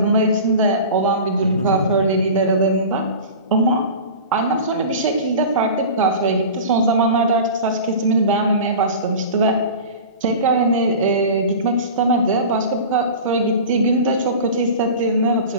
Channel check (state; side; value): inverted; both; correlation -0.34